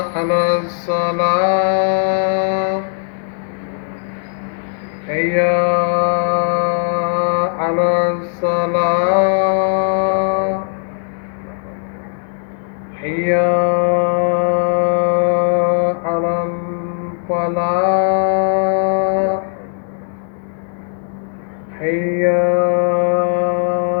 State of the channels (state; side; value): silent; right; digital silence